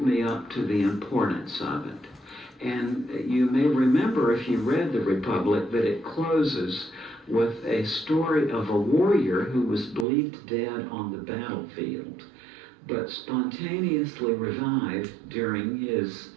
me up to the importance of it. And you may remember, if you read the Republic, that it closes with a story of a warrior who was believed dead on the battlefield, but spontaneously revived during his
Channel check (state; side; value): drops out; left; at 10.1 s